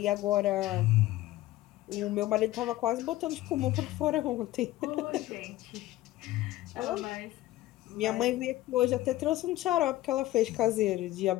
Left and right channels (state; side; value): quieter; right; 16.2 dB